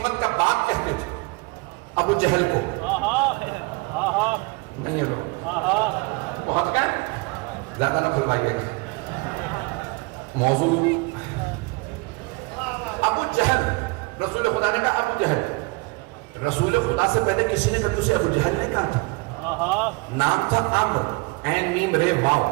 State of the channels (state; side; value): quieter; left; 26.7 dB